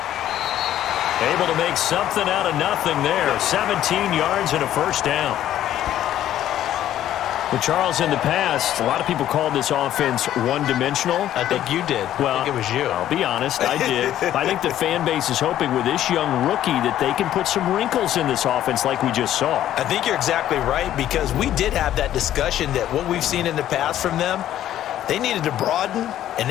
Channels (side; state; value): right; quieter; 12.1 dB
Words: Able to make something out of nothing there. 17 yards and a first down. Well, Charles, in the past, a lot of people called this offense one-dimensional. I think you did. Well, I think it was you. I'll be honest, I did. I think the fan base is hoping with this young rookie that they can put some wrinkles in this offense like we just saw. I think you're exactly right, because we did have that discussion that what we've seen in the past from them, they needed to broaden, and